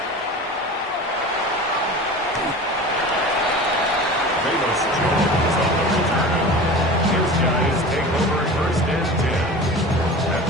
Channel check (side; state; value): both; normal; correlation 0.35